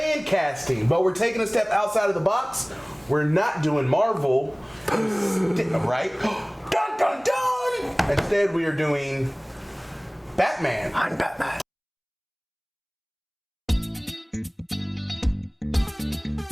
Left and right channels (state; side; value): identical; both; correlation 1.00